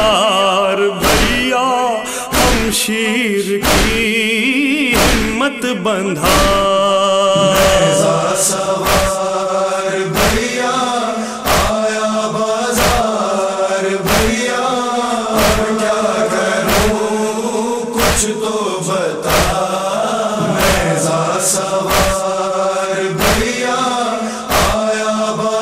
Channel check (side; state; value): both; identical; correlation 1.00